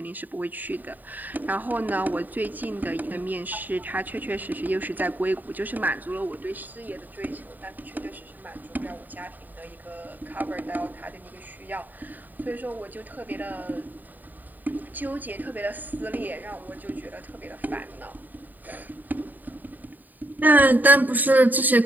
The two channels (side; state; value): left; late; 0.087 ms